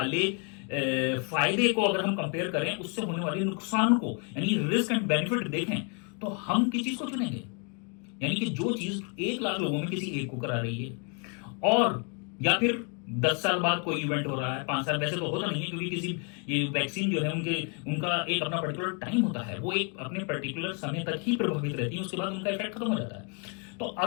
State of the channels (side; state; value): right; quieter; 37.2 dB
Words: फायदे को अगर हम कंपेयर करें उससे होने वाले नुकसान को, यानी रिस्क एंड बेनिफिट देखें, तो हम किस चीज को चुनेंगे? यानी कि जो चीज 1 लाख लोगों में किसी एक को करा रही है, और या फिर 10 साल बाद कोई इवेंट हो रहा है, 5 साल, वैसे तो होता नहीं है क्योंकि किसी ये वैक्सीन जो है उनका एक अपना पर्टिकुलर टाइम होता है, वो एक अपने पर्टिकुलर समय तक ही प्रभावित रहती है, उसके बाद उनका इफेक्ट खत्म हो जाता है। तो